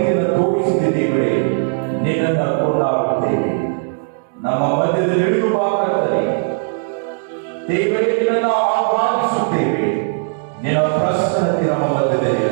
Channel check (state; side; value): silent; left; digital silence